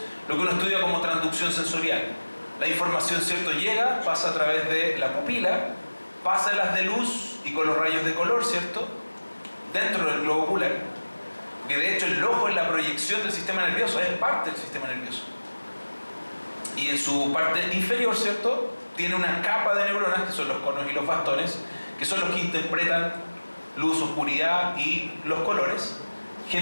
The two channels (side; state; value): both; inverted; correlation -1.00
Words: lo que uno estudia como transducción sensorial. La información, ¿cierto?, llega, pasa a través de la pupila, pasa en las de luz y con los rayos de color, ¿cierto?, dentro del globo ocular. Que de hecho el ojo es la proyección del sistema nervioso, es parte del sistema nervioso. Y en su parte inferior, ¿cierto?, tiene una capa de neuronas, que son los conos y los bastones, que son los que interpretan luz, oscuridad y los colores.